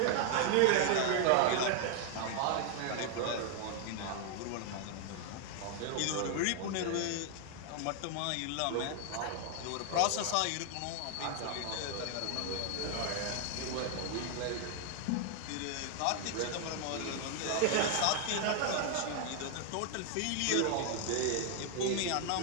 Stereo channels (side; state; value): both; different; correlation 0.00